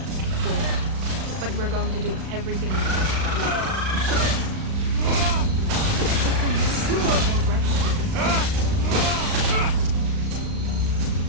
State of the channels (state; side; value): late; left; 36 ms